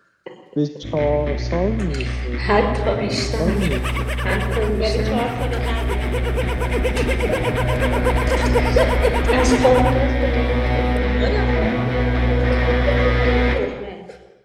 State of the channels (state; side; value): identical; both; correlation 1.00